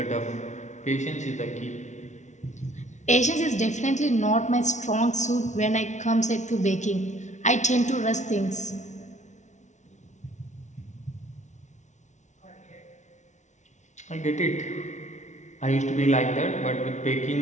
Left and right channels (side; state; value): right; late; 0.34 ms